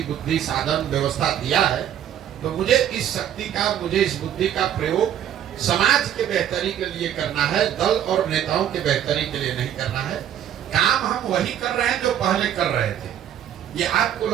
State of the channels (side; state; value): left; quieter; 10.3 dB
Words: बुद्धि, साधन, व्यवस्था दिया है तो मुझे इस शक्ति का, मुझे इस बुद्धि का प्रयोग समाज के बेहतरी के लिए करना है, दल और नेताओं के बेहतरी के लिए नहीं करना है। काम हम वही कर रहे हैं जो पहले कर रहे थे। ये आपको